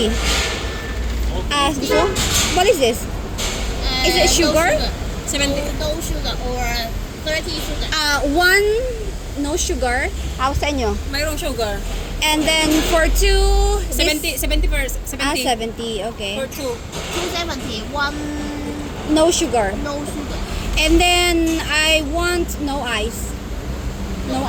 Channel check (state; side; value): identical; both; correlation 1.00